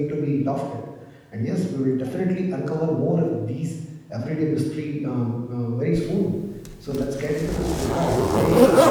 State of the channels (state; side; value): identical; both; correlation 1.00